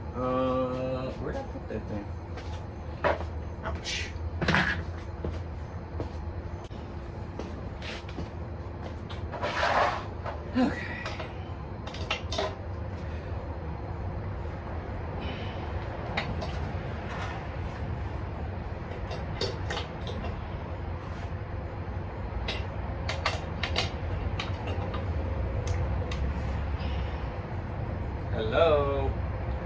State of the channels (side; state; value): both; identical; correlation 1.00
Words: Where'd I put that thing? Hello?